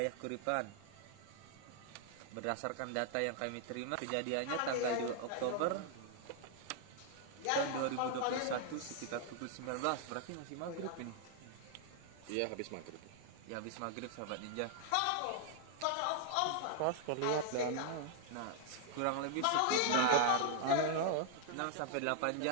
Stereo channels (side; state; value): both; different; correlation 0.00